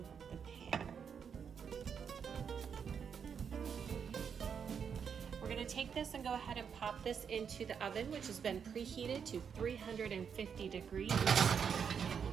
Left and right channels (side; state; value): left; quieter; 7.0 dB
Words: the pan. We're going to take this and go ahead and pop this into the oven, which has been preheated to 350 degrees.